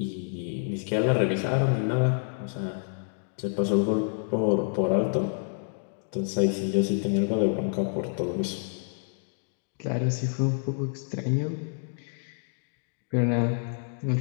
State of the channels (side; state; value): right; silent; digital silence